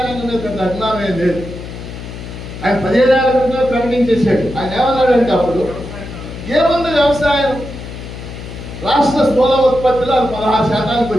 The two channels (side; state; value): left; noise; hum, 11 dB below the sound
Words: రంగం మీద పెద్ద అభిమానమే లేదు. ఆయన 15 ఏళ్ల క్రితమే ప్రకటించేశాడు. ఆయన ఏమన్నాడంటే అప్పుడు ఏముంది వ్యవసాయం, రాష్ట్ర స్థూల ఉత్పత్తిలో అది 16%